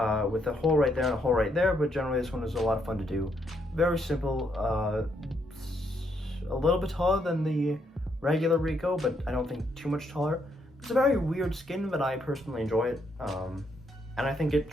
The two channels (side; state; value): both; normal; correlation 0.75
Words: with a hole right there and a hole right there, but generally this one was a lot of fun to do. Very simple, a little bit taller than the regular Rico, but I don't think too much taller. It's a very weird skin, but I personally enjoy it, and I think it